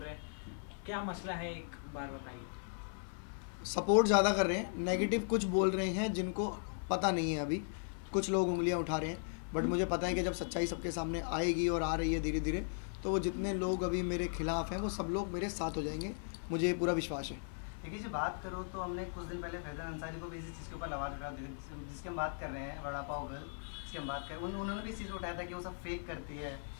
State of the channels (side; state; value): right; silent; 53 dB below the other